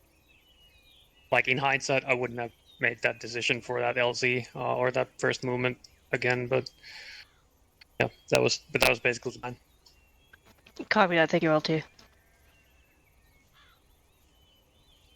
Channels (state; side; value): identical; both; correlation 1.00